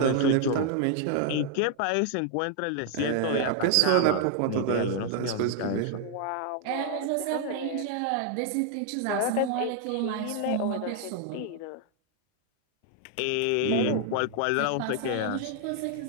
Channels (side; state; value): both; different; correlation 0.00